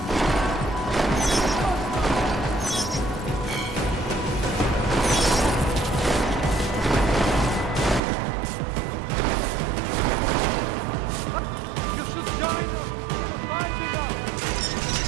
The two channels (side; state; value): left; drops out; at 8.0 s